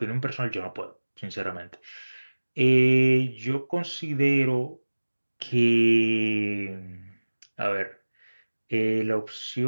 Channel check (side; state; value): both; inverted; correlation -1.00